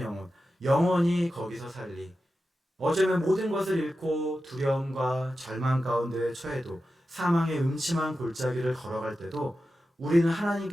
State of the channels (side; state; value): both; normal; correlation 0.92